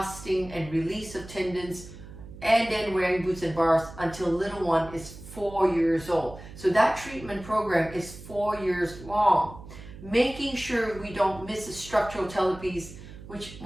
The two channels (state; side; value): noise; right; hum, 15 dB below the sound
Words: and release of tendons, and then wearing boots and bars until little one is 4 years old. So that treatment program is 4 years long. Making sure we don't miss the structural talipes, which